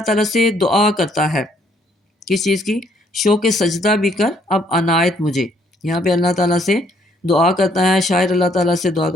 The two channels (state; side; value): normal; both; correlation 0.66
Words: تعالیٰ سے دعا کرتا ہے، کس چیز کی؟ شوق سجدہ بھی کر اب عنایت مجھے۔ یہاں پہ اللہ تعالیٰ سے دعا کرتا ہے، شاعر اللہ تعالیٰ سے دعا